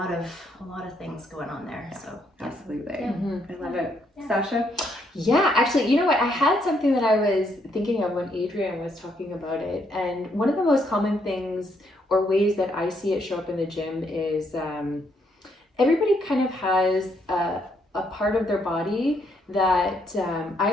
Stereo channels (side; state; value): both; normal; correlation 0.73